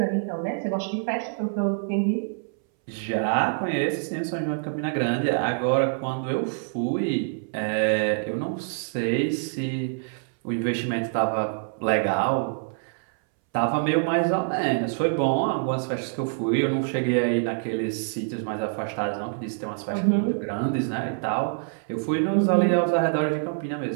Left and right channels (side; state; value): left; silent; 61 dB below the other